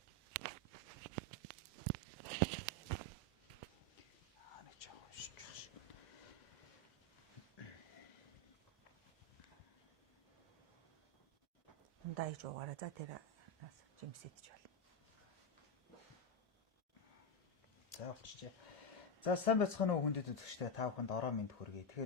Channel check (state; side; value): normal; both; correlation 0.07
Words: Дайж уугаараа за тэр жимсэдэж байна. За болчихжээ. За сайн байцгаана уу хүндэт үзэгчдээ та бүхэнд ороо мэнд хүргэе.